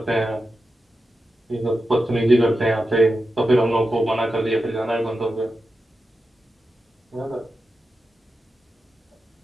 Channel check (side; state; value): both; normal; correlation 0.90